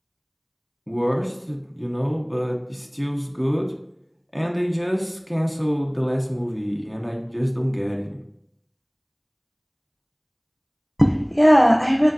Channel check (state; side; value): identical; both; correlation 1.00